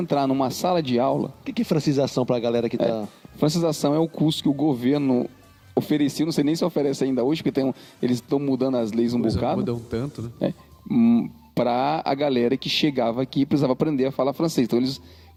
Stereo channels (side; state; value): both; identical; correlation 1.00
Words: numa sala de aula. O que é francização para a galera que tá... Francização é o curso que o governo oferecia, não sei nem se oferece ainda hoje, porque eles estão mudando as leis um bocado. Mudam tanto, né? Para a galera que chegava aqui e precisava aprender a falar francês.